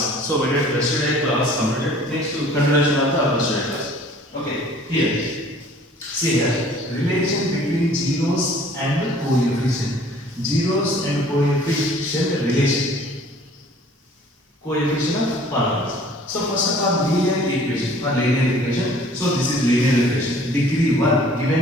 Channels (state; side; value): normal; both; correlation 0.52